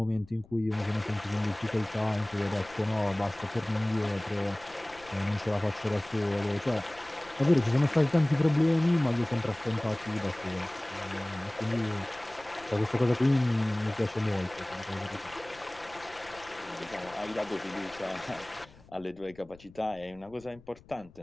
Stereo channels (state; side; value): noise; left; rumble, 24 dB below the sound